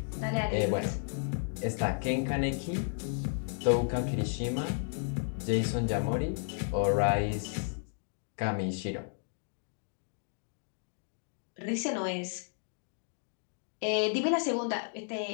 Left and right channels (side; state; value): right; silent; digital silence